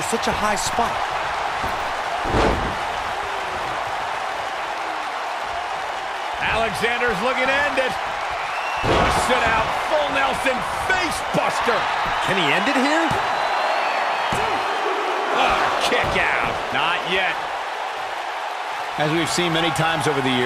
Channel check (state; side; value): identical; both; correlation 1.00